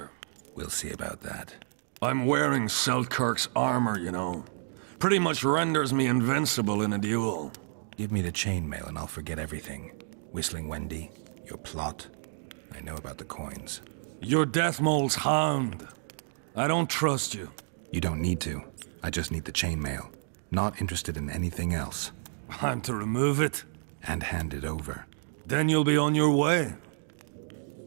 We'll see about that. I'm wearing Selkirk's armor, you know. Pretty much renders me invincible in a duel. Give me the chainmail and I'll forget everything. Whistling Wendy, your plot. I know about the coins. You're Deathmole's hound. I don't trust you. You don't need to. I just need the chainmail. Not interested in anything else. I'm to remove it? And hand it over. Then you'll be on your way.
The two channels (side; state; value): left; silent; digital silence